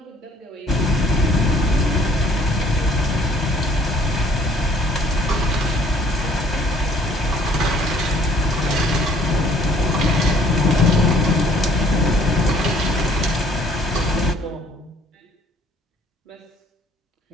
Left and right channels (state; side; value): normal; both; correlation 0.59